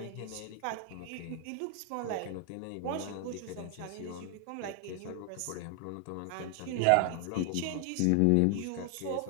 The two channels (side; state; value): both; different; correlation 0.00